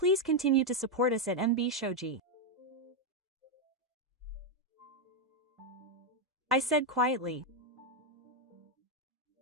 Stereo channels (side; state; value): both; normal; correlation 0.03